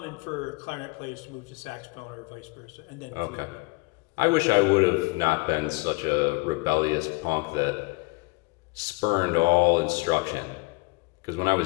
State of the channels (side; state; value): right; quieter; 25.7 dB